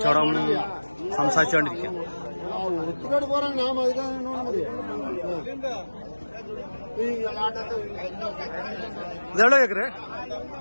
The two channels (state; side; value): inverted; both; correlation -1.00